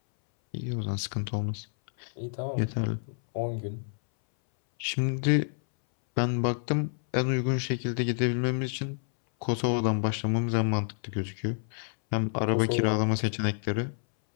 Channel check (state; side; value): silent; right; 59 dB below the other